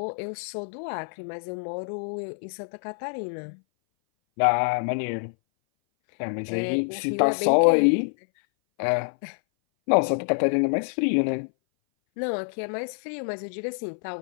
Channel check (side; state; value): right; silent; 59 dB below the other